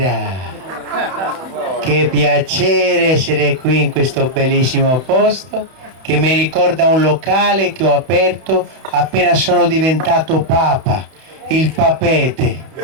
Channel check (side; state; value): left; late; 31 ms